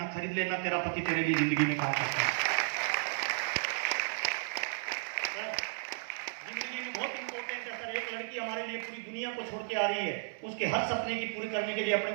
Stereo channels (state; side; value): silent; left; 55 dB below the other